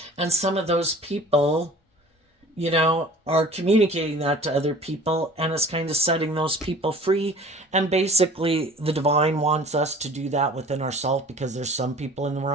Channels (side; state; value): both; normal; correlation 0.45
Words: And some of those people, are communicating that to other people, and it's kind of setting those people free. And basically, the divine wants us to do that within ourselves, because there's some people in the